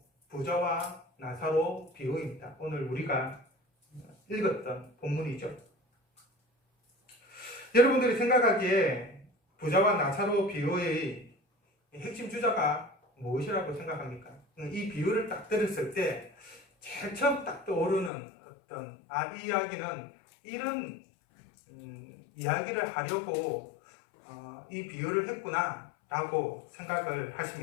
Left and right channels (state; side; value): drops out; right; at 18.1 s